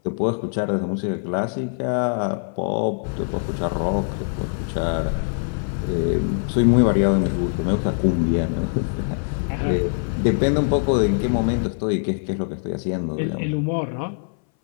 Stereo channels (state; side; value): silent; right; 60 dB below the other